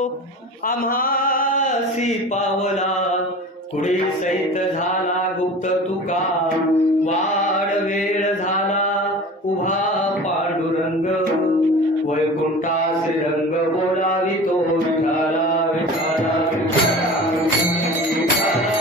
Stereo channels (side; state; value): both; normal; correlation 0.37